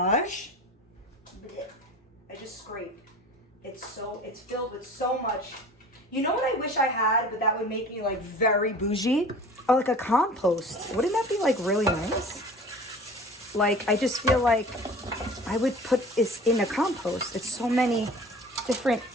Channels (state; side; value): normal; both; correlation 0.42